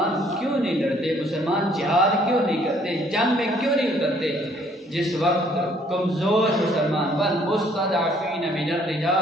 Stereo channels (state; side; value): normal; both; correlation 0.62